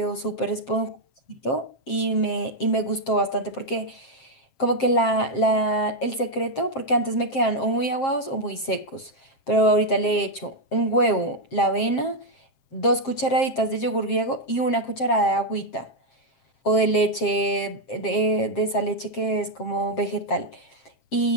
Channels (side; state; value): right; late; 7.5 ms